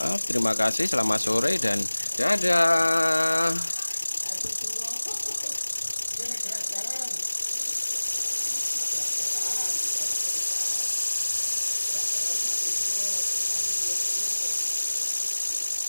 Terima kasih, selamat sore dan dadah.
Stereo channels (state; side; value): inverted; both; correlation -1.00